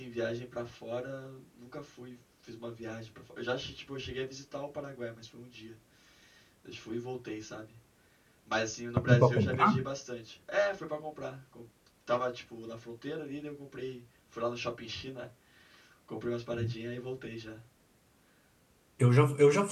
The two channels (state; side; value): identical; both; correlation 1.00